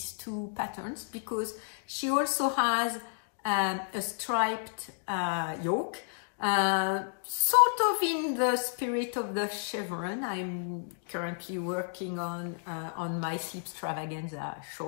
two patterns, because she also has a striped yoke, sort of in the spirit of the chevron I'm currently working on my Sleepstravaganza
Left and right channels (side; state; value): right; silent; digital silence